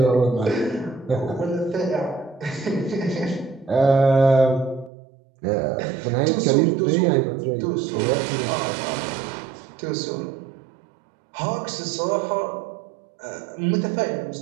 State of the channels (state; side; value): drops out; left; at 4.9 s